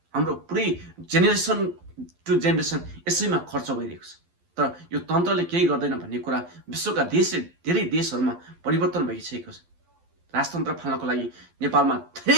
हाम्रो पुरै जेनेरेसन टु जेनेरेसन यसैमा खर्च भइरहेको छ। तर यो तन्त्रले केही गर्दैन भन्ने कुरा विश्वका धेरै देशहरूमा परिवर्तन भइसकेको छ। राजतन्त्र फाल्नको लागि नेपालमा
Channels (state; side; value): late; left; 12 ms